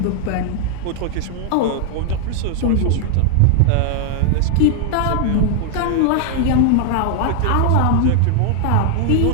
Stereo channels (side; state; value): both; different; correlation 0.00